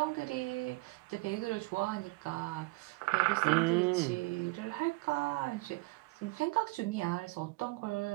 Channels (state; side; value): quieter; left; 24.2 dB